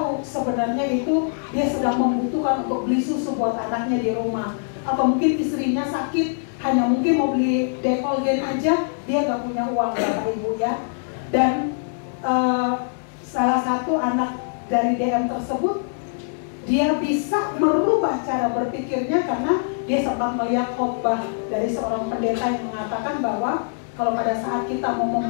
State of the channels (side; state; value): right; silent; 63 dB below the other